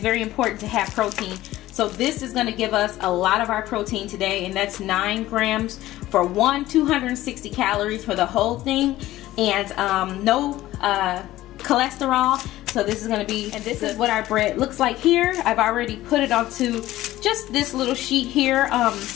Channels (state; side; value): quieter; right; 15.7 dB